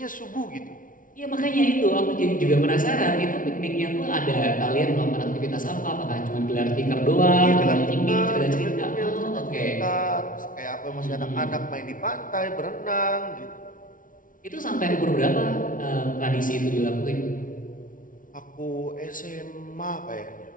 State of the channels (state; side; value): late; right; 0.39 ms